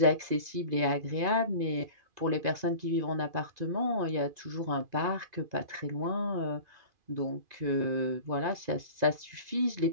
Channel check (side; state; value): left; late; 2.4 ms